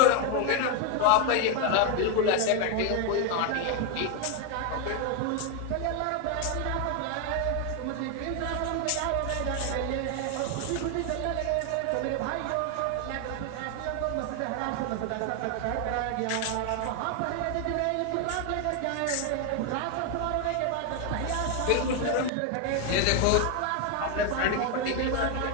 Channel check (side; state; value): both; different; correlation 0.01